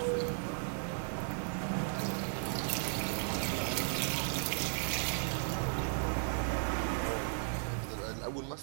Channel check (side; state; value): left; silent; 54 dB below the other